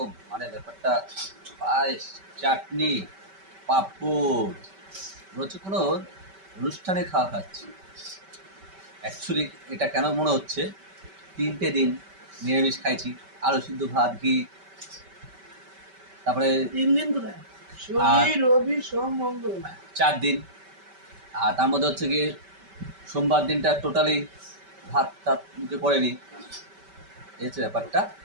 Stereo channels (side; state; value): left; late; 5.2 ms